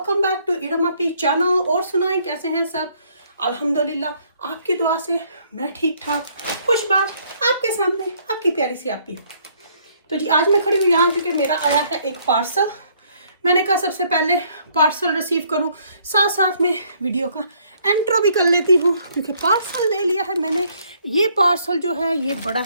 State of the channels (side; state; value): both; inverted; correlation -0.65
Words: back to Iram Api channel. और सुनाएं कैसे हैं सब। अल्हम्दुलिल्लाह आपकी दुआ से मैं ठीक ठाक खुशबाश आपके सामने आपकी प्यारी सी आपी। तो जी आज मैं खड़ी हूँ यहाँ क्योंकि मेरा आया है एक पार्सल। मैंने कहा सबसे पहले पार्सल रिसीव करूँ, साथ साथ में वीडियो का एंट्रो भी कर लेती हूँ क्योंकि पार्सल ले लिया है मैंने। ये पार्सल जो है ये बड़ा